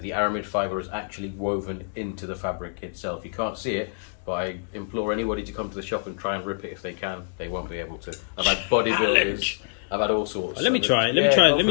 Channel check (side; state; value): right; silent; digital silence